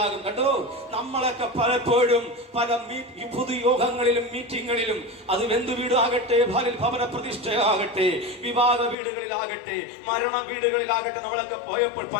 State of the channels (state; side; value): drops out; right; at 9.0 s